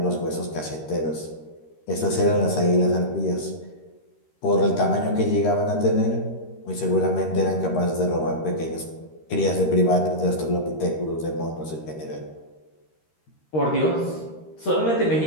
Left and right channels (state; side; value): late; right; 13 ms